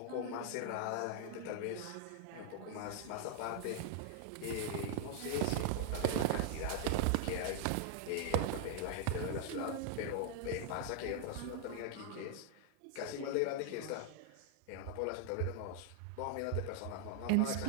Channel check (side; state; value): both; different; correlation 0.00